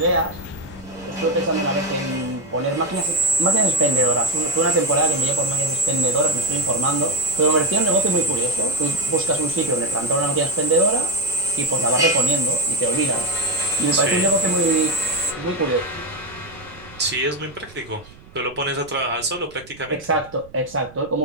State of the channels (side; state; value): right; noise; rumble, 22 dB below the sound